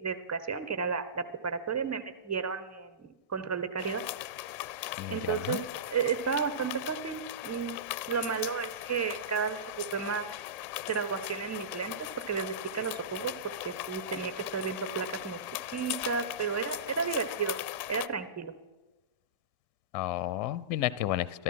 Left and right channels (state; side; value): late; right; 1.8 ms